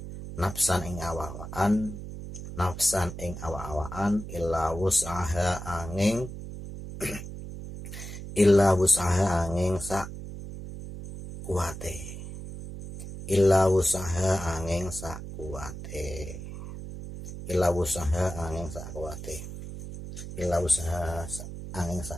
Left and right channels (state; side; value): noise; right; hum, 10 dB below the sound